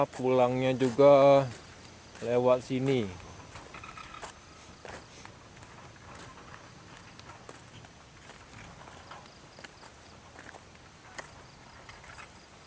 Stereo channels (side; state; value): both; identical; correlation 1.00